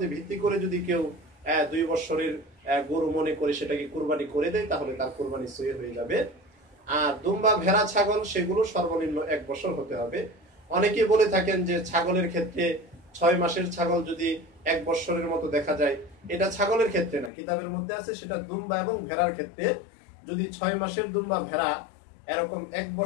ভিত্তি করে যদি কেউ 2 বছরের গরু মনে করে সেটাকে কুরবানি করে দেয়, তাহলে তার কুরবানি সহি হয়ে যাবে। আর দুম্বা, ভেড়া, ছাগল, সেগুলো সর্বনিম্ন 1 বছর হতে হবে। অনেকে বলে থাকেন যে ছাগলের ক্ষেত্রে 6 মাসের ছাগল যদি 1 বছরের মতো দেখা যায়, এটা ছাগলের ক্ষেত্রে না, কিতাবের মধ্যে আছে সেটা দুম্বা এবং ভেড়ার ক্ষেত্রে। যদি 6 মাসের দুম্বা ভেড়া এরকম 1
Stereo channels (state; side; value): drops out; right; at 17.3 s